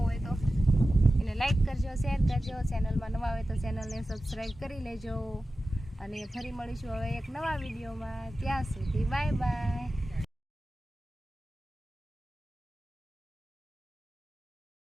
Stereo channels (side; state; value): both; normal; correlation 0.94